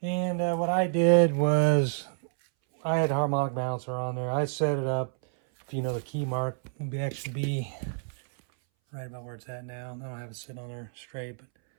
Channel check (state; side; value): silent; left; 59 dB below the other